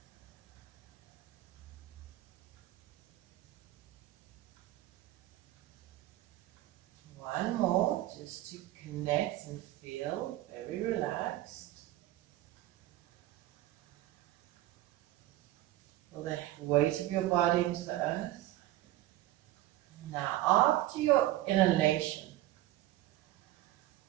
One more, just to connect and feel very relaxed. Feel the weight of your body into the earth. Now, after your inhalation,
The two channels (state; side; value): quieter; left; 15.5 dB